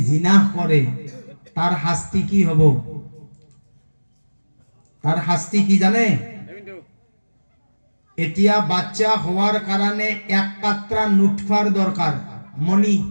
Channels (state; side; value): inverted; both; correlation -1.00